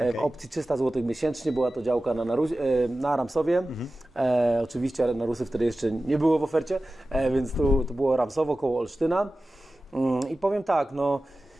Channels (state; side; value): normal; both; correlation 0.95